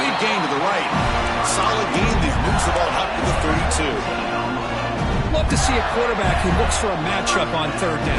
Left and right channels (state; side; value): identical; both; correlation 1.00